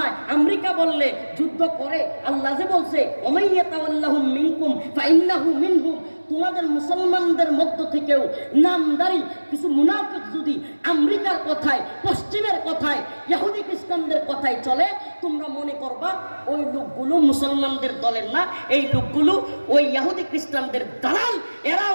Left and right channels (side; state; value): both; inverted; correlation -1.00